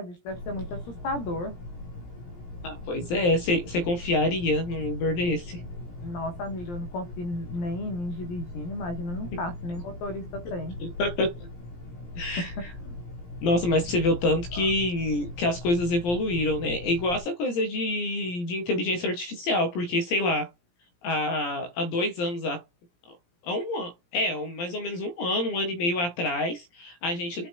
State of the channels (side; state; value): right; late; 17 ms